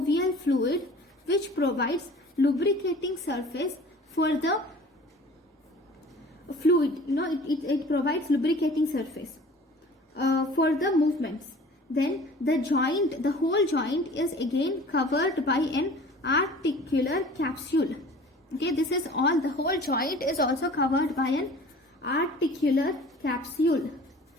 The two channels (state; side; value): normal; both; correlation 0.45